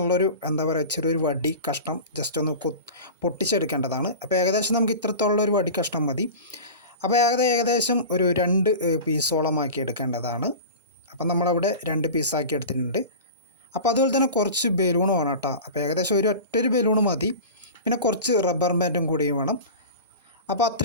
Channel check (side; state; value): both; inverted; correlation -0.32